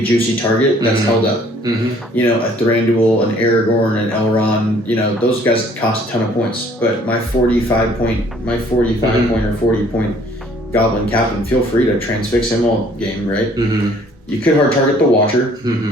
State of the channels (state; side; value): normal; both; correlation 0.58